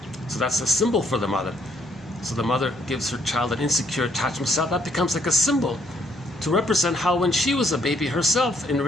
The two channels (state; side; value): normal; both; correlation 0.69